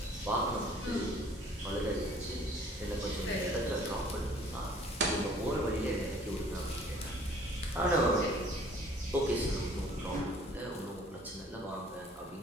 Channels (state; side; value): normal; both; correlation 0.54